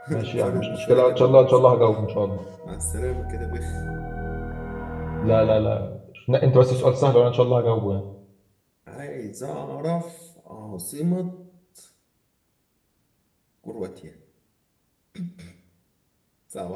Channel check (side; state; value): both; identical; correlation 1.00